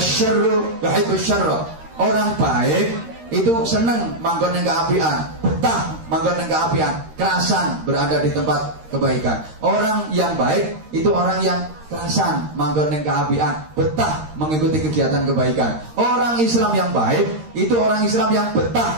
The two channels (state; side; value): late; left; 13 ms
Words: yuhibbus syarra. Orang baik itu seneng manggon ning keapian, betah manggon ning keapian, kerasan berada di tempat kebaikan. Orang yang baik itu orang yang kerasan manggon ning keapian, betah mengikuti kegiatan kebaikan. Orang Islam yang baik itu orang Islam yang